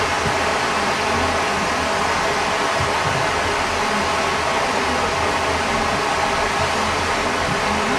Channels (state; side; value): identical; both; correlation 1.00